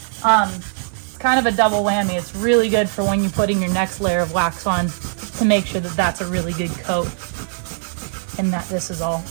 kind of a double whammy. It's really good for when you're putting your next layer of wax on to make sure that that's a really good coat and that this is all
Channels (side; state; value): left; silent; 65 dB below the other